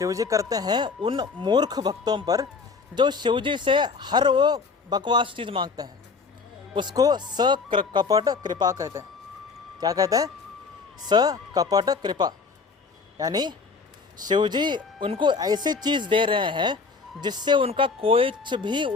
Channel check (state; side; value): quieter; right; 4.8 dB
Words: जी करते हैं उन मूर्ख भक्तों पर जो शिव जी से हर वो बकवास चीज़ मांगते हैं, उसको सकपट कृपा कहते हैं। क्या कहते हैं? सकपट कृपा। यानी शिव जी उनको ऐसी चीज़ दे रहे हैं जिससे उनका कुछ भी